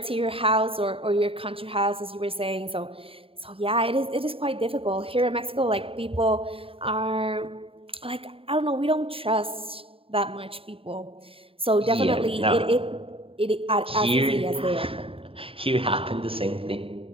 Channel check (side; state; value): left; late; 0.27 ms